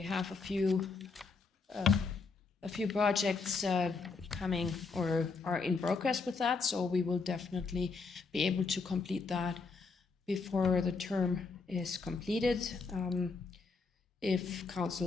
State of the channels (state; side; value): quieter; right; 4.4 dB